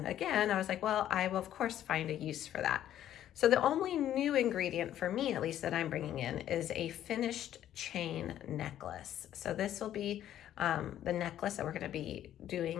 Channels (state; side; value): quieter; right; 11.6 dB